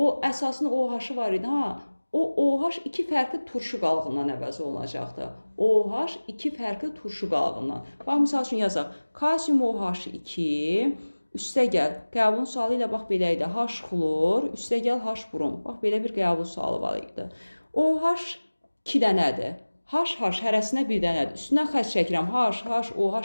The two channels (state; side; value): inverted; both; correlation -1.00